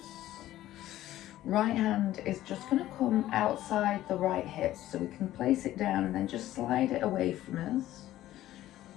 Right hand is just going to come outside the right hip, so we can place it down and then just slide it away from us.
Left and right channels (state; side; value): quieter; right; 14.2 dB